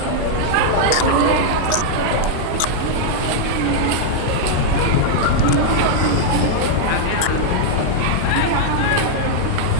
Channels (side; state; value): both; different; correlation -0.01